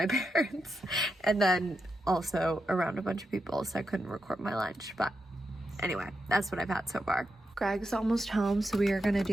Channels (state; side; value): normal; both; correlation 0.86